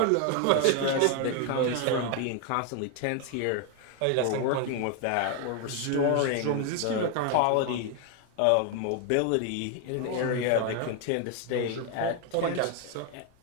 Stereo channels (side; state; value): both; different; correlation 0.01